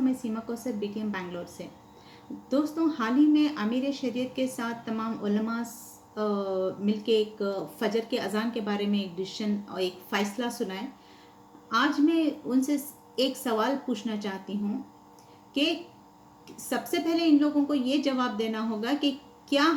मैं सीमा कौसर बीटीएम बैंगलोर से। दोस्तों, हाल ही में अमीर शरीयत के साथ तमाम उलमा मिलके एक फजर के अज़ान के बारे में एक डिसीजन और एक फ़ैसला सुनाए। आज मैं उनसे एक सवाल पूछना चाहती हूँ कि सबसे पहले इन लोगों को ये जवाब देना होगा कि क्या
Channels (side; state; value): both; identical; correlation 1.00